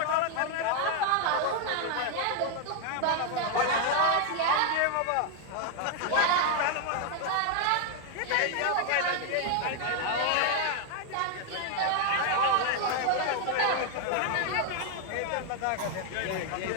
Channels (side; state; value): both; different; correlation 0.00